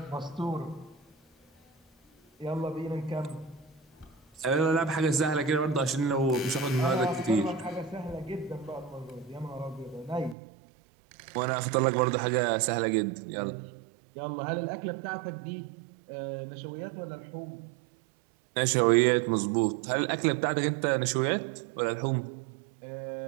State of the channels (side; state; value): left; drops out; at 10.4 s